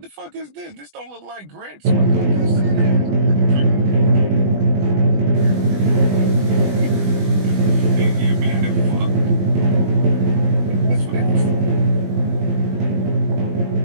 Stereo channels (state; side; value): late; left; 20 ms